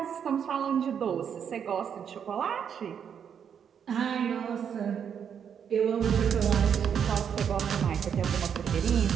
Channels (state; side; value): quieter; left; 7.9 dB